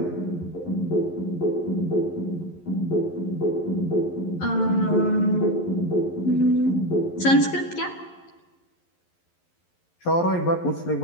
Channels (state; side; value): late; right; 11 ms